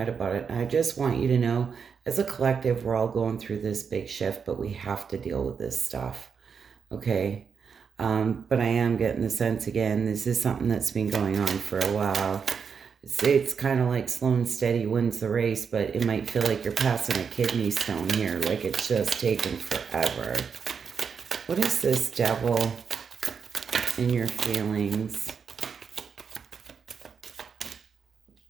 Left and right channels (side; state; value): left; quieter; 6.3 dB